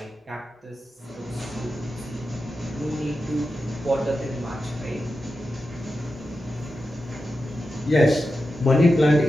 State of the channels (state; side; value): normal; both; correlation 0.90